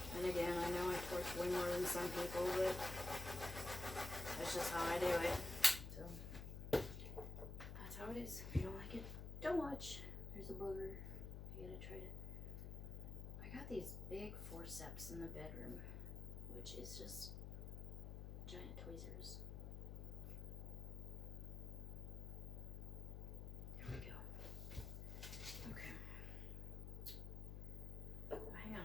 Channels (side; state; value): left; noise; hum, 6 dB below the sound